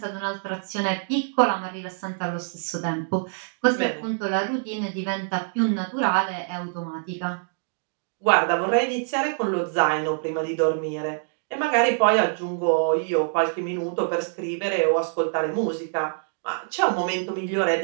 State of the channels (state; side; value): silent; left; digital silence